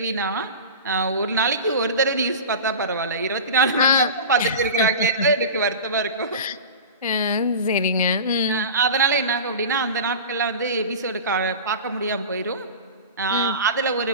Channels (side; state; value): both; inverted; correlation -0.31